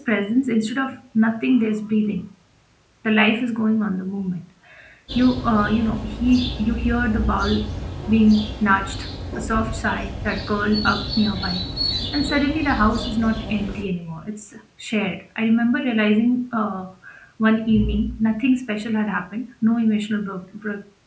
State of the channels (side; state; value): both; identical; correlation 1.00